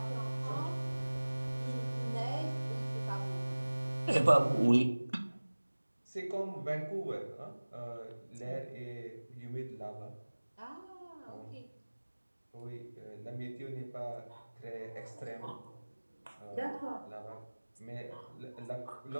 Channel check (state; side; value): inverted; both; correlation -1.00